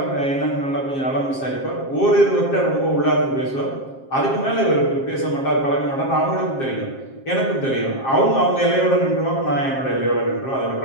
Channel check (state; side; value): late; right; 7.5 ms